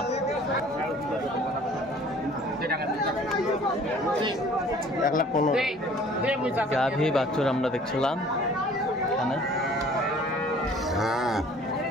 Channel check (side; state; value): both; normal; correlation 0.52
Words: 1,15,000 গাভী বাছুর আমরা দেখছিলাম এখানে।